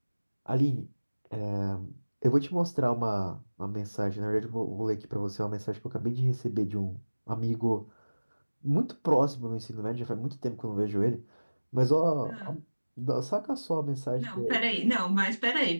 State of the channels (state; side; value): inverted; both; correlation -1.00